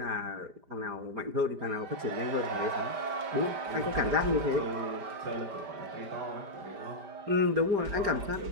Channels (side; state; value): left; late; 5.0 ms